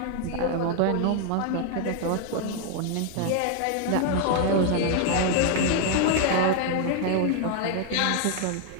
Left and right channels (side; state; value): both; different; correlation 0.00